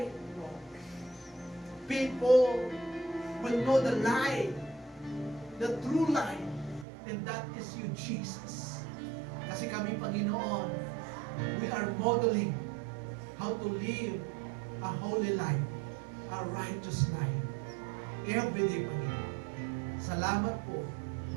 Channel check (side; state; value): left; drops out; at 6.9 s